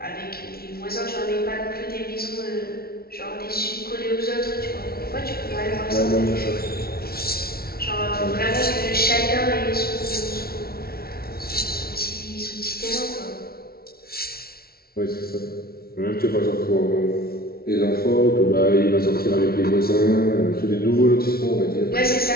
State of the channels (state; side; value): late; right; 0.44 ms